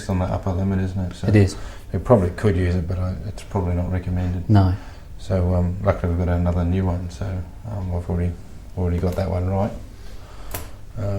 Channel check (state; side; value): identical; both; correlation 1.00